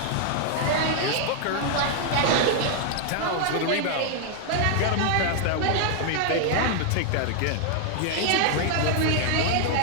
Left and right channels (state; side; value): different; both; correlation 0.00